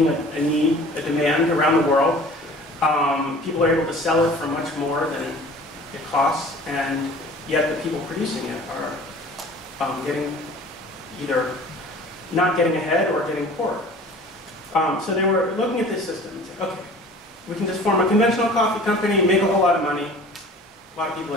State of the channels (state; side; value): normal; both; correlation 0.45